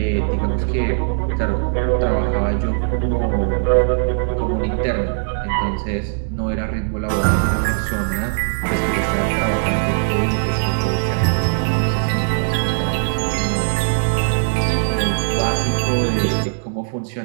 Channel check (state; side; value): silent; left; digital silence